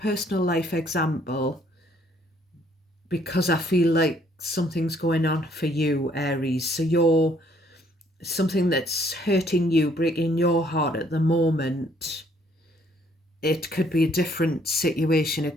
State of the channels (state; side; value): normal; both; correlation 0.65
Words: life example because I feel like something's going on for you, Aries. So something that's hurting you, breaking your heart at the moment. It could be a different situation. It